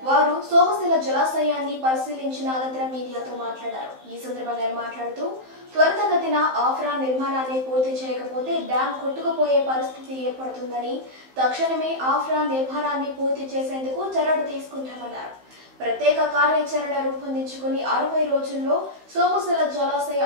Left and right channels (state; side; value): late; left; 15 ms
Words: వారు సోమశిల జలాశయాన్ని పరిశీలించిన అనంతరం మీడియాతో మాట్లాడారు. ఈ సందర్భంగా మాట్లాడుతూ త్వరితగతిన ఆఫ్రా నిర్మాణాన్ని పూర్తి చేయకపోతే డ్యాం కొట్టుకుపోయే పరిస్థితి ఏర్పడుతుందని, తక్షణమే ఆఫ్రా నిర్మాణాన్ని పూర్తి చేసేందుకు చర్యలు తీసుకుంటామన్నారు. ప్రత్యేక కార్యాచరణ రూపొందించుకుని 60 రోజుల్లో సోమశిల జలాశయ